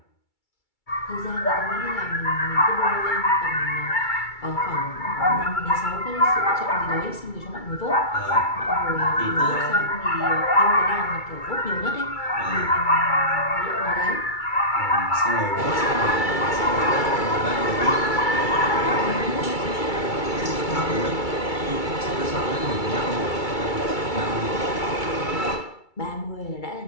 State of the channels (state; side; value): late; right; 2.3 ms